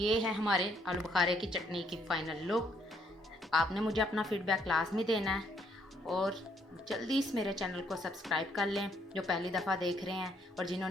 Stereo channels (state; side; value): normal; both; correlation 0.69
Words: ये है हमारे आलू बुखारे की चटनी की फाइनल लुक। आपने मुझे अपना फीडबैक लाजमी देना है और जल्दी इस मेरे चैनल को सब्सक्राइब कर लें जो पहली दफ़ा देख रहे हैं, और